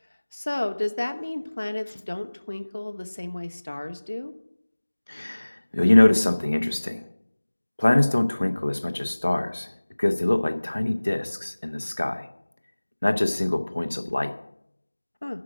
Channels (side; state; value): both; inverted; correlation -1.00